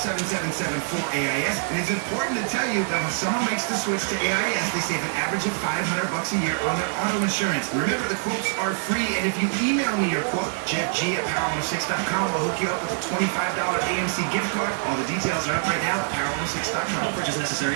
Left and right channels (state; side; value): silent; left; digital silence